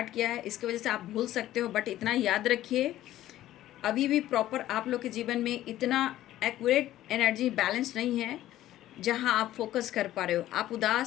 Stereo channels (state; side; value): quieter; right; 13.9 dB